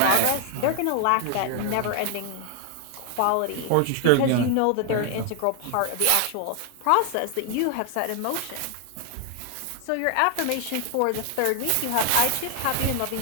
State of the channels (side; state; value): both; different; correlation 0.00